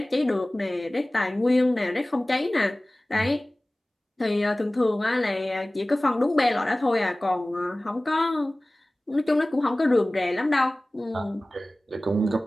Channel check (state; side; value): normal; both; correlation 0.98